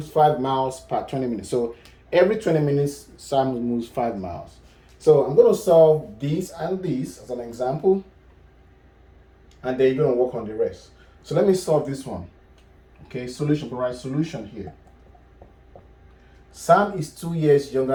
5 miles per 20 minutes. So every 20 minutes, Sam moves 5 miles. So I'm going to solve this and this as an example, and then you're going to work on the rest. So let me solve this one. Okay, solution, provide solution here. Sam is 2 years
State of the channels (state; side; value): identical; both; correlation 1.00